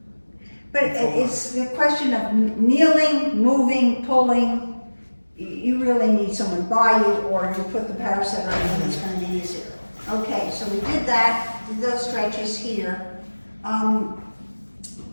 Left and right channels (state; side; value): inverted; both; correlation -1.00